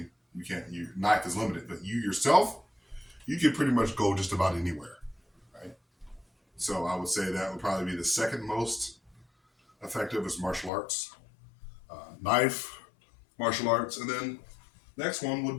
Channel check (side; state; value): right; drops out; at 10.7 s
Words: you can't. Your knife is limited, but you yourself, you can pretty much go just about anywhere, right? So I would say that would probably be the second most effective is martial arts, knife, martial arts, and then next one would